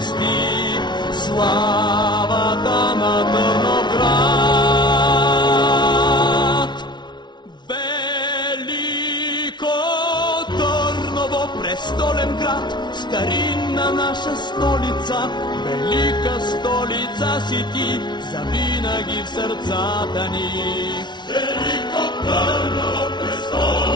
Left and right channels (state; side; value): late; right; 0.21 ms